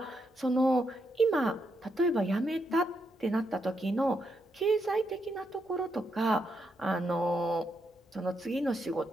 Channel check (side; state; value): both; normal; correlation 0.80